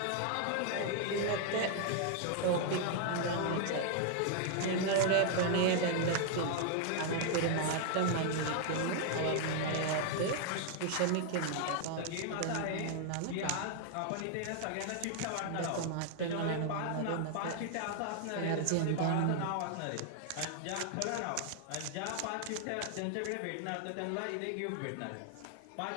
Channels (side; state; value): both; different; correlation 0.00